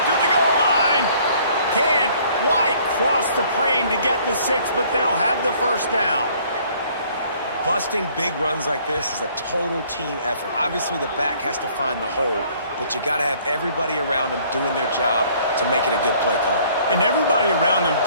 to the goal line. Can't quite cross the plane to get the 6, but they'll have the 1st down. Busting big runs like this is a total team effort. Obviously, the back has to find the hole, but you got to have everybody around them doing their job to make it a good play call. And everybody around them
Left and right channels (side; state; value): both; inverted; correlation -0.59